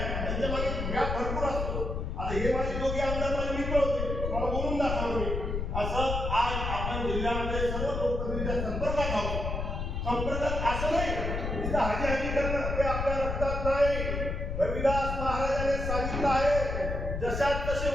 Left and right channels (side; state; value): left; noise; rumble, 2 dB below the sound